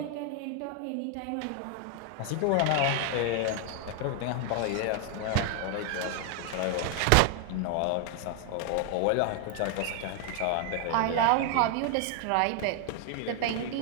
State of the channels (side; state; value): both; different; correlation 0.00